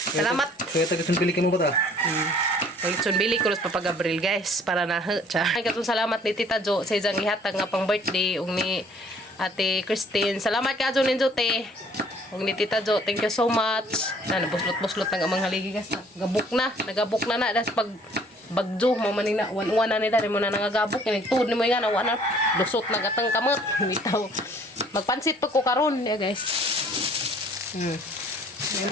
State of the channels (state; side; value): normal; both; correlation 0.57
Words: Salamat. Kaya taga bili ka mo ba ta? Lechon bili ko pa Gabriel guys para na tiya. Ay katong salamat ni Tita Jo sa isang ihatag nga pang birthday ug ni Ate Christine. Salamat ka Jo ninyo te. Ug ni Tita Jo, thank you so much. Na nabuslot-buslot ng amang haligi guys. Nagabuk na das pag bagjo mo man na wan na ni dari mo na nangagabok ni tud ni mo nga na wana lusot na gatang kamot bitaw. Magpansit pa ko karon ya guys.